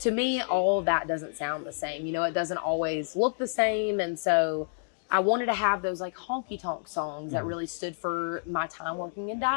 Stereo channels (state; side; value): silent; right; digital silence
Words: me, all of that doesn't sound the same. You know, it doesn't always look the same. And so I wanted to have those like honky tonk songs that really stood for my time working in